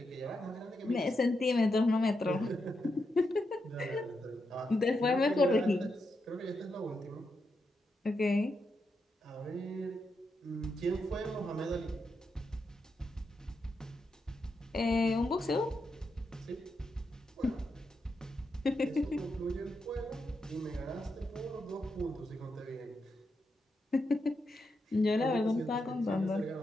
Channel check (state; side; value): normal; both; correlation 0.84